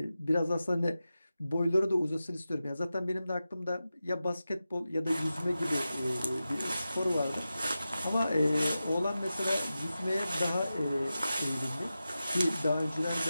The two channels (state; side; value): inverted; both; correlation -0.93